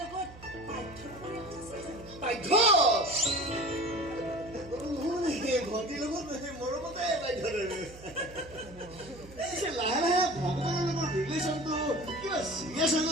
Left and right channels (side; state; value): right; noise; hum, 18 dB below the sound